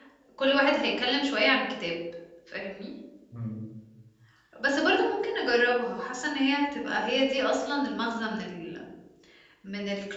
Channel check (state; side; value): identical; both; correlation 1.00